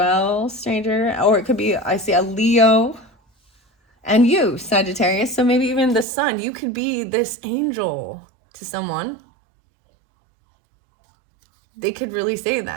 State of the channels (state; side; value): drops out; left; at 6.1 s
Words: stranger. Or it could be, I see a Leo and you, Sagittarius. So maybe even the sun. You could be this angel to someone. They could really say